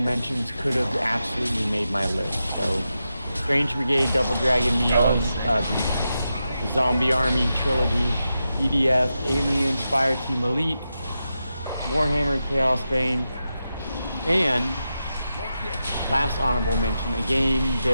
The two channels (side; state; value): both; inverted; correlation -0.89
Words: could have absolutely made my list. So, Strange Brigade, Double Dragon Neon, the Zombie Army trilogy, EDF, Aliens, Fireteam Elite, Warhammer Chaos Bane, and last honorable mention, a game